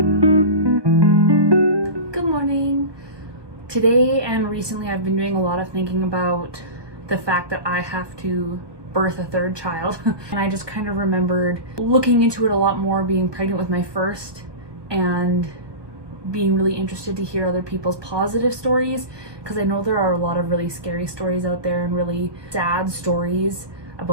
morning. Today and recently I've been doing a lot of thinking about the fact that I have to birth a third child. And I just kind of remembered looking into it a lot more, being pregnant with my first and being really interested to hear other people's positive stories, because I know there are a lot of really scary stories out there and really sad stories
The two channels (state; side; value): late; left; 1.2 ms